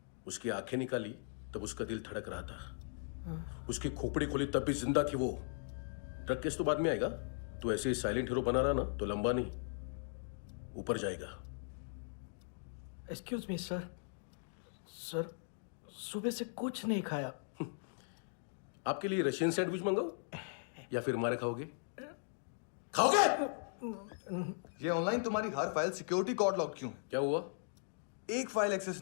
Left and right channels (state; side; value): silent; right; digital silence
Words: उसकी आंखें निकाली तब उसका दिल धड़क रहा था। उसकी खोपड़ी खोली तब भी जिंदा थी वो। ड्रग केस तो बाद में आएगा। तो ऐसे ही साइलेंट हीरो बना रहा ना तो लंबा नहीं, ऊपर जाएगा। एक्सक्यूज मी सर, सर सुबह से कुछ नहीं खाया। आपके लिए रशियन सैंडविच मंगाओ या फिर हमारे खाओगे? खाओगे? ये ऑनलाइन तुम्हारी हर फाइल सिक्योरिटी कोड लॉक क्यों है? क्या हुआ? एक फाइल एक्सेस